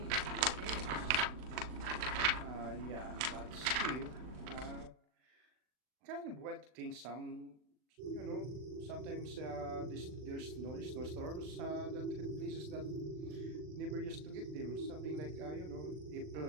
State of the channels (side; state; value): left; late; 39 ms